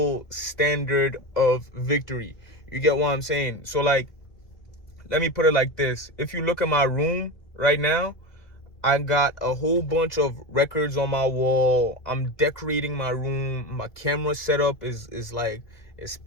standard of victory. You get what I'm saying? So, like, let me put it like this. If you look at my room right now, I got a whole bunch of records on my wall. I'm decorating my room. My camera setup is like, it's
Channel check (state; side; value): late; right; 1.8 ms